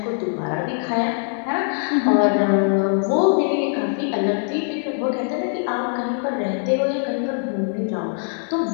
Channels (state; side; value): silent; right; 64 dB below the other